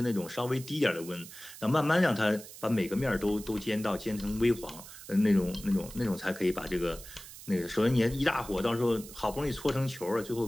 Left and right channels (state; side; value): noise; right; hiss, 15 dB below the sound